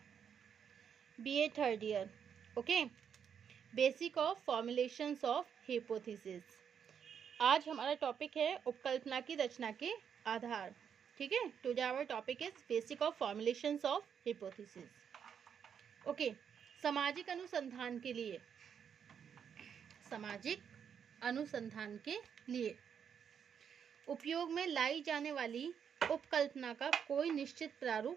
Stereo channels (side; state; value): left; quieter; 7.7 dB